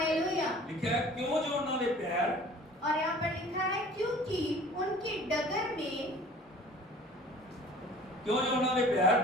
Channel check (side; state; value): both; normal; correlation 0.47